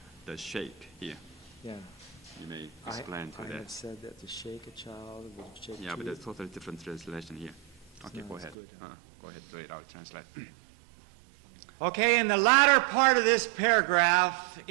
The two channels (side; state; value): left; drops out; at 8.6 s